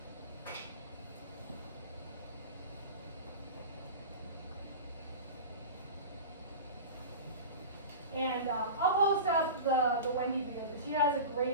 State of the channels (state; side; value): inverted; both; correlation -0.31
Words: And I'll post up the Wendy video, because she has a